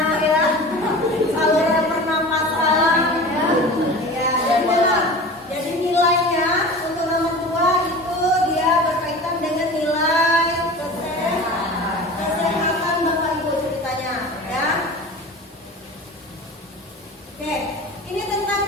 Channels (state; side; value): normal; both; correlation 0.36